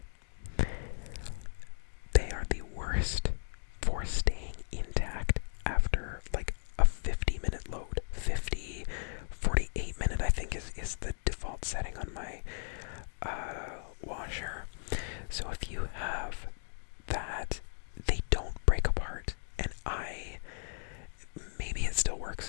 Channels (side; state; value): right; silent; digital silence